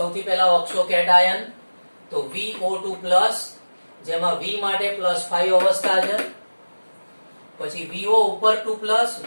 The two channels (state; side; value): inverted; both; correlation -1.00